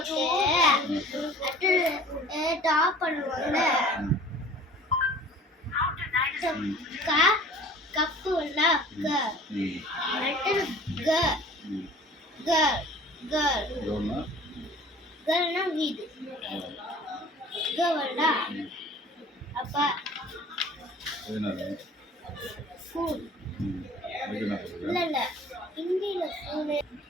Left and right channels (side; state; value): both; normal; correlation 0.47